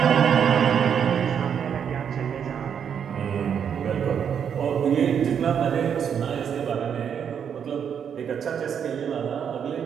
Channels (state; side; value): quieter; left; 7.9 dB